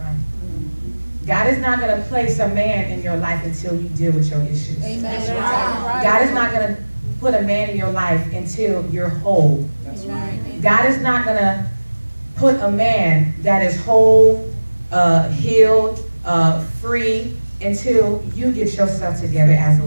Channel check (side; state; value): both; inverted; correlation -1.00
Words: God is not going to place a man in your life until you deal with your issues. Amen. God is not going to put a man in your life until you're whole. That's right. God is not going to put a man that is whole, healed, free, until you get yourself together as a